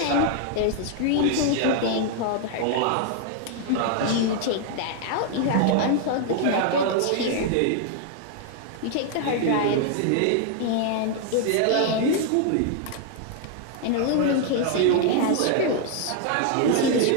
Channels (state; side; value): different; both; correlation 0.00